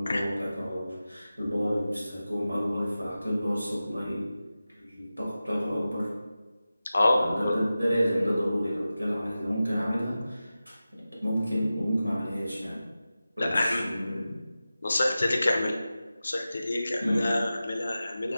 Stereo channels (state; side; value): inverted; both; correlation -0.94